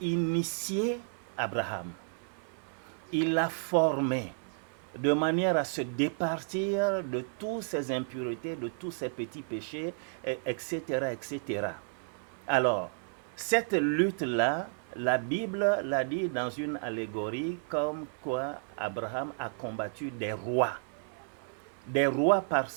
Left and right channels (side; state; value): left; silent; 56 dB below the other